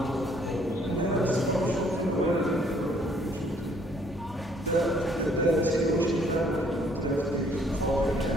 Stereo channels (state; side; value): normal; both; correlation 0.63